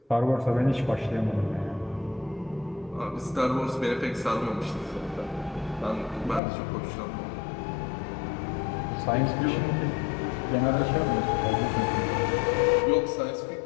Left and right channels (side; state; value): right; drops out; at 6.4 s